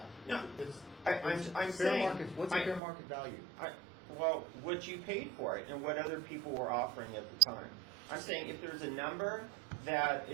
No, it's I'm fair saying- market. What's the fair market value? Well, what you paid for it and what other people were offering at the time. I'm saying if there's a number that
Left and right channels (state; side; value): drops out; left; at 2.8 s